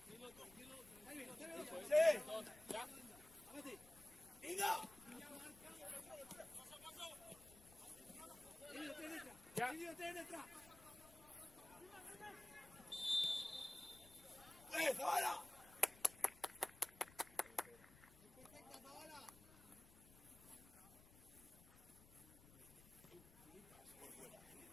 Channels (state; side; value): noise; left; rumble, 21 dB below the sound